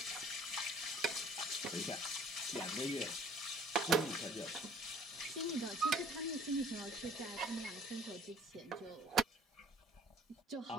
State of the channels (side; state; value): both; normal; correlation 0.53